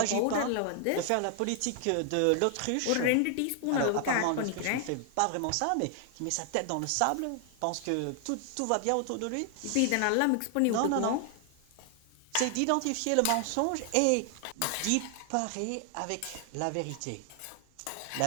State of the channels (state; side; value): different; both; correlation 0.00